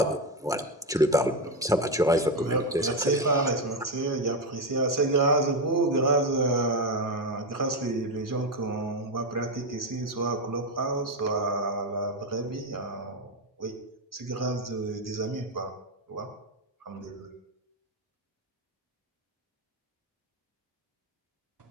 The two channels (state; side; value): normal; both; correlation 0.10